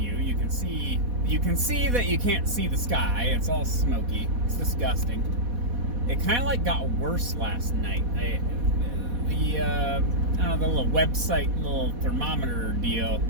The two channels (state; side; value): late; left; 4.1 ms